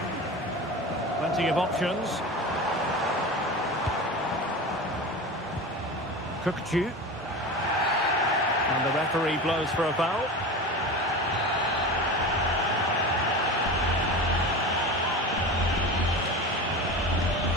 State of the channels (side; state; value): both; normal; correlation 0.29